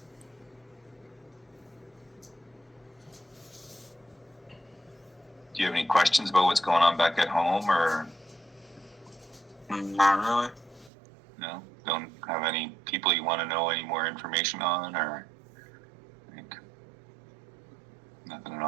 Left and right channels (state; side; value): drops out; left; at 10.9 s